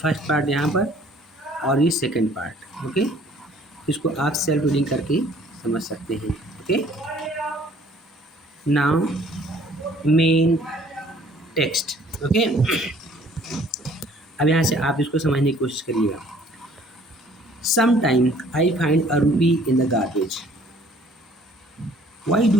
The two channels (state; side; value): normal; both; correlation 0.56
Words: फर्स्ट पार्ट यहाँ पर और ये सेकंड पार्ट। ओके, इसको आप सेल्फ रीडिंग करके समझ सकते हैं। Okay, now main text. Okay, अब यहाँ से आप इसको समझने की कोशिश करिएगा। Sometimes I find a rupee in the garbage. Why do